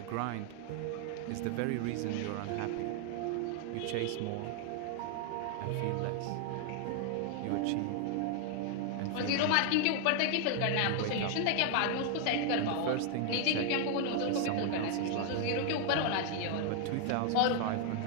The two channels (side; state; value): both; different; correlation 0.00